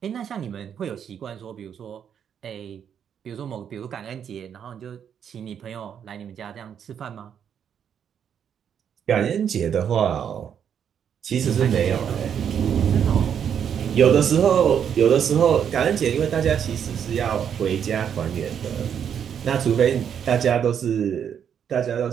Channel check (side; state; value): left; quieter; 8.3 dB